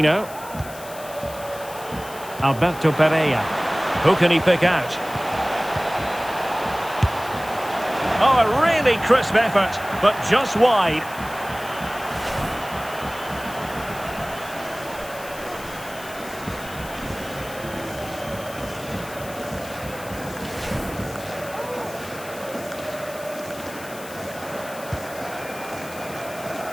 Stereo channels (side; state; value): left; noise; hiss, 16 dB below the sound